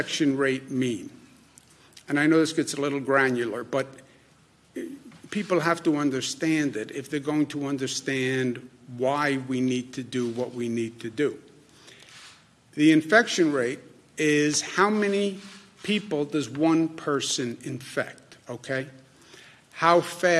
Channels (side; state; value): both; identical; correlation 1.00